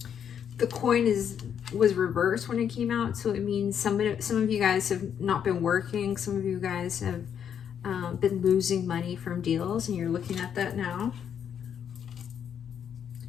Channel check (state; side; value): quieter; right; 8.4 dB